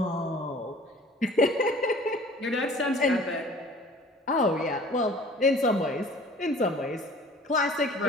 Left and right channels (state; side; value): normal; both; correlation 0.48